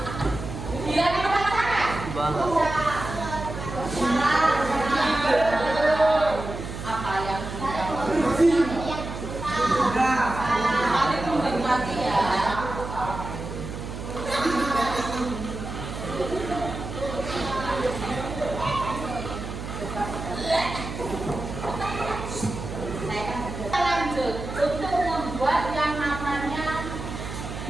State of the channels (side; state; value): right; noise; hum, 8 dB below the sound